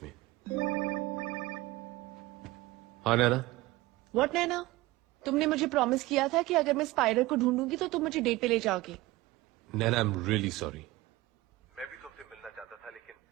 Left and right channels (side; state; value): left; quieter; 19.1 dB